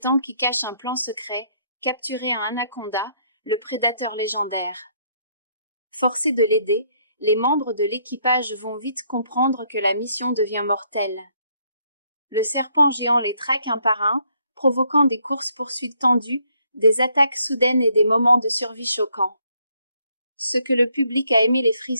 qui cache un plan secret, capturer un anaconda, le prédateur légendaire. Forcés de l'aider, les membres de l'équipage vont vite comprendre que la mission devient mortelle. Le serpent géant les traque un par un, provoquant des courses-poursuites tendues, des attaques soudaines et des moments de survie choquants. Ce que le public a aimé, les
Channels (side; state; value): both; inverted; correlation -0.70